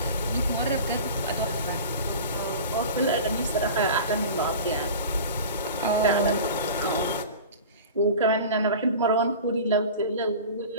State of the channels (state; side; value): inverted; both; correlation -0.36